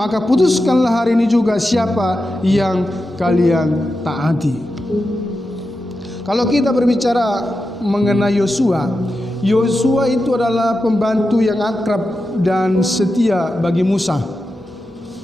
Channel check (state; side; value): normal; both; correlation 0.90